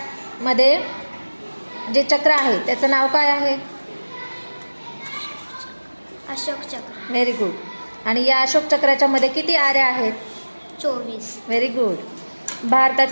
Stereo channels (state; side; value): inverted; both; correlation -1.00